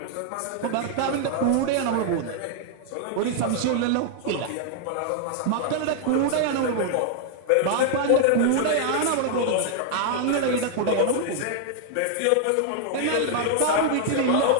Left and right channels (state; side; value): different; both; correlation 0.00